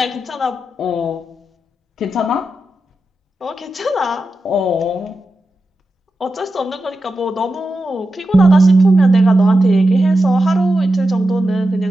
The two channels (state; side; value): normal; both; correlation 0.90